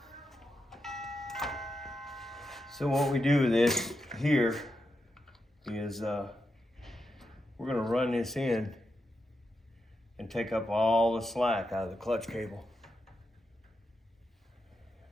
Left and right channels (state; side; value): normal; both; correlation 0.86